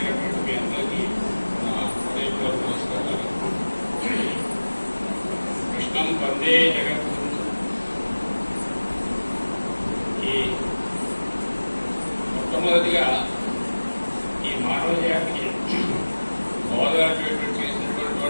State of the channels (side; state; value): both; inverted; correlation -1.00